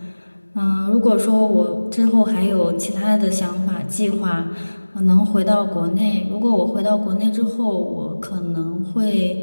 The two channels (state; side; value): inverted; both; correlation -1.00